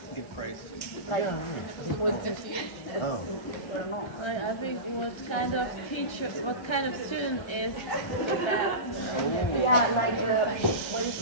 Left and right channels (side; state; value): right; late; 1.3 ms